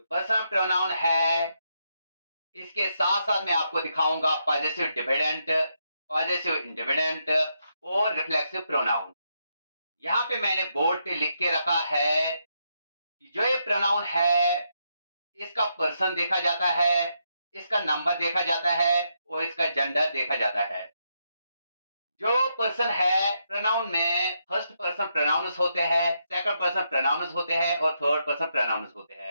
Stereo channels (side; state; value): both; inverted; correlation -0.80